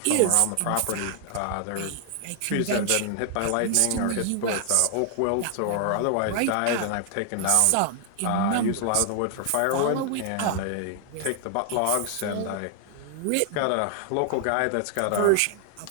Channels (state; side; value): different; both; correlation 0.00